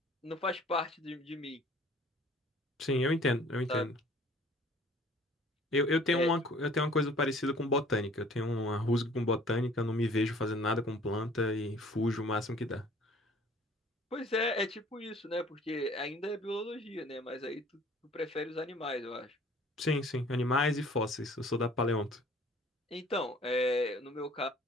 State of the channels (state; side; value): normal; both; correlation 0.53